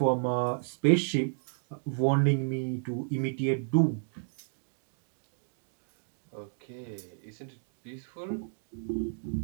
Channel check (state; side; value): silent; left; digital silence